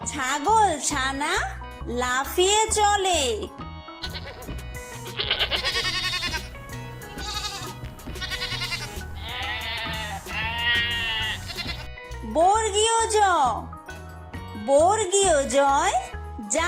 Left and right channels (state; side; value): identical; both; correlation 1.00